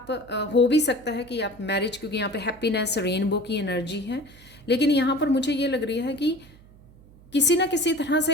हो भी सकता है कि आप मैरिज, क्योंकि यहाँ पे हैप्पीनेस, रेनबो की एनर्जी है। लेकिन यहाँ पर मुझे ये लग रही है कि किसी ना किसी तरह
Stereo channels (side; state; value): right; noise; hum, 24 dB below the sound